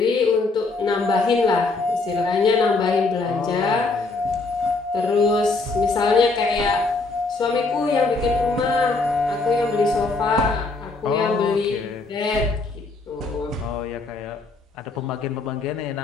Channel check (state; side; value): quieter; right; 3.7 dB